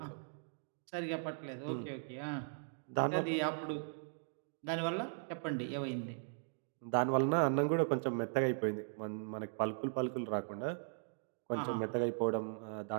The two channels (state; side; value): silent; left; digital silence